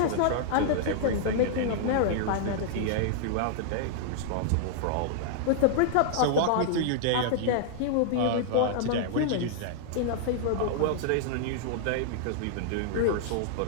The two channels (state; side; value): different; both; correlation -0.01